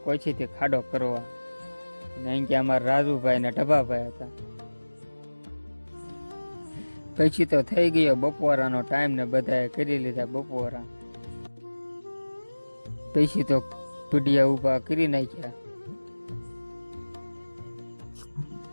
કોઈથી ખાડો કરવા, અને અહીં કે અમારા રાજુભાઈ ને ઢબાભાઈ હતા। પછી તો થઈ ગયો બપોરાનો ટાઈમ ને બધાએ કરી લીધા બપોરા। પછી તો પીડિયા ઊભા કરી નાખ્યા।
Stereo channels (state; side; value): inverted; both; correlation -1.00